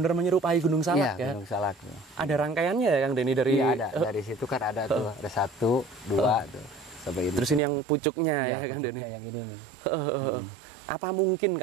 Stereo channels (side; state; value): left; drops out; at 7.6 s